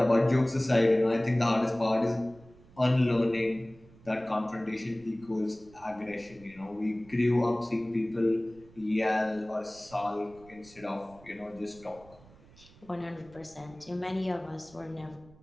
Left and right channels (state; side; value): noise; right; rumble, 24 dB below the sound